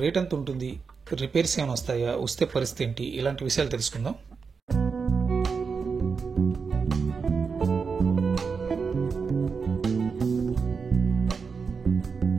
రేట్ ఎంత ఉంటుంది? రిపేర్స్ ఏమైనా వస్తాయా? వస్తే పరిస్థితి ఏంటి? ఇలాంటి విషయాలు తెలుసుకుందాం.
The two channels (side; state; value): left; quieter; 5.3 dB